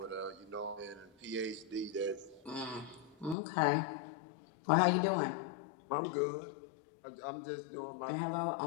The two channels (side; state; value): right; drops out; at 3.4 s